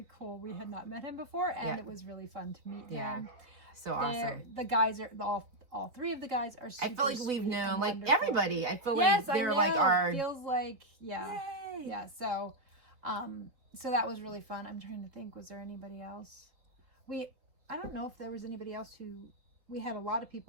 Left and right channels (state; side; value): late; left; 4.0 ms